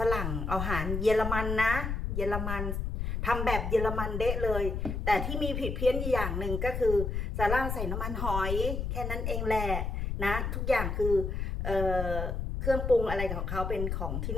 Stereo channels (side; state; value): left; noise; rumble, 2 dB below the sound